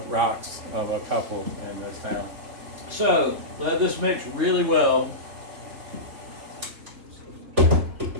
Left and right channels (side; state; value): left; late; 3.7 ms